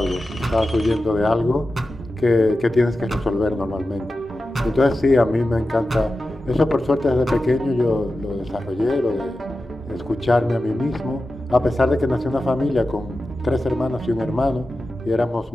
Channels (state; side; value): normal; both; correlation 0.93